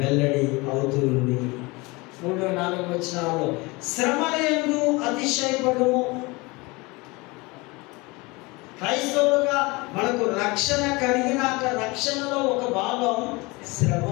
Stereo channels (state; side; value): quieter; right; 24.7 dB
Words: అవుతుంది. 3-4 వచనాల్లో శ్రమలందు అతిశయపడుము. క్రైస్తవులుగా మనకు రక్షణ కలిగినాక రక్షణలో ఒక భాగం